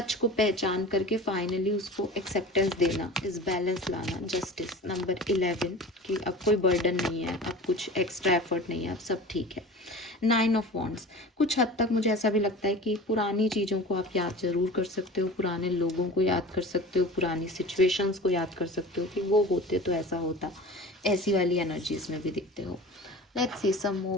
को पहचान करके फाइनली उसको एक्सेप्टेंस देना, इस बैलेंस लाना। जस्टिस नंबर 11 कि अब कोई बर्डन नहीं है, अब कुछ एक्स्ट्रा एफर्ट नहीं है, अब सब ठीक है। 9 ऑफ वॉन्ड्स, कुछ हद तक मुझे ऐसा भी लगता है कि पुरानी चीज़ों को आप याद ज़रूर कर सकते हो, पुराने लोगों को याद कर सकते हो, पुरानी सिचुएशंस को याद कर सकते हो कि वो होते तो ऐसा होता, ऐसी वाली एनर्जीज में भी दिखते हो। Let's see some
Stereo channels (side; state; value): both; normal; correlation 0.38